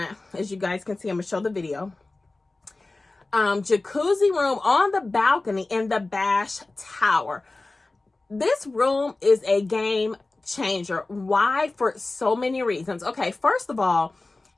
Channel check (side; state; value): right; quieter; 3.2 dB